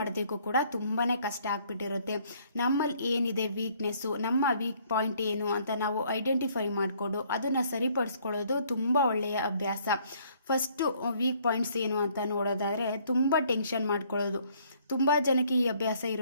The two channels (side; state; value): both; inverted; correlation -0.63